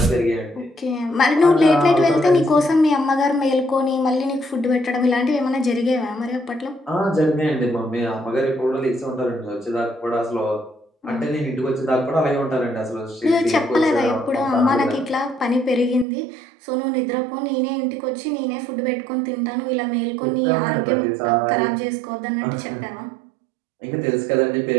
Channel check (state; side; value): drops out; left; at 16.1 s